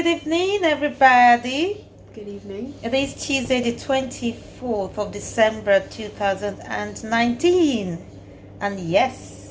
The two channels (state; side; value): identical; both; correlation 1.00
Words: evening, everybody. Good evening. It is Tuesday, the 24th of December 2019. And